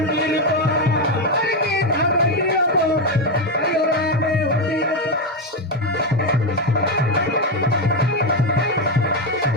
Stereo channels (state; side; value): normal; both; correlation 0.08